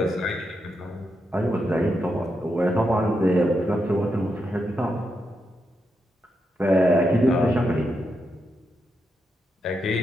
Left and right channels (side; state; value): both; normal; correlation 0.84